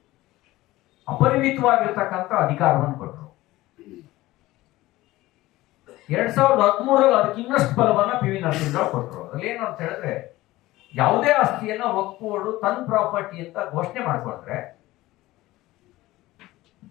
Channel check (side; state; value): right; quieter; 17.7 dB